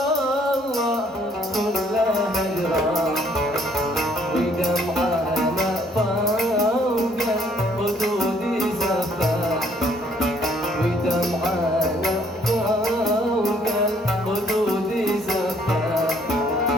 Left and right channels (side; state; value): both; normal; correlation 0.64